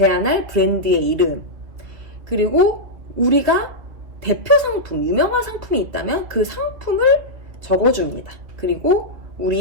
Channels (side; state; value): left; late; 2.9 ms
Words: 브랜드의 이름, 그리고 우리가 대표 상품, 유명한 상품이 있다면 그 상품을 적어줍니다. 그리고